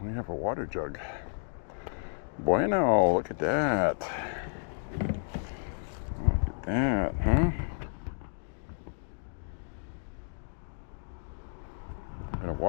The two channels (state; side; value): silent; right; digital silence